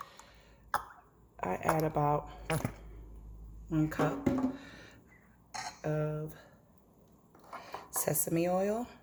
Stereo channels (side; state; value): both; identical; correlation 1.00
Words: I add about 1 cup of sesame oil.